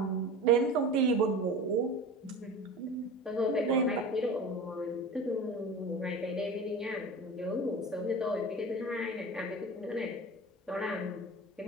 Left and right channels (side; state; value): both; normal; correlation 0.34